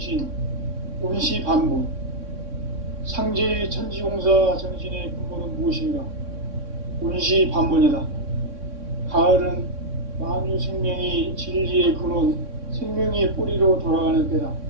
운시반본, 상제의 천지공사 정신의 근본은 무엇인가? 운시반본이다. 가을은 만유 생명이 진리의 근원, 생명의 뿌리로 돌아가는 때다.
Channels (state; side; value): late; left; 3.6 ms